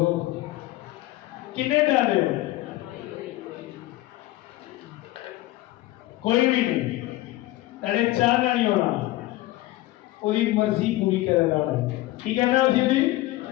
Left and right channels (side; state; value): right; quieter; 17.4 dB